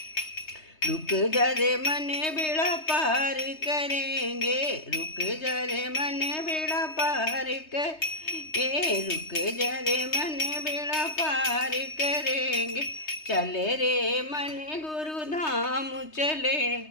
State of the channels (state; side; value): late; right; 3.2 ms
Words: रुक जरे मने बेड़ा पार करेंगे, रुक जरे मने बेड़ा पार करेंगे, रुक जरे मने बेड़ा पार करेंगे। चले रे मने गुरुधाम